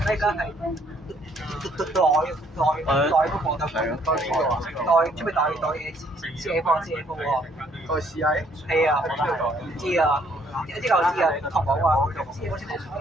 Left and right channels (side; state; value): both; normal; correlation 0.65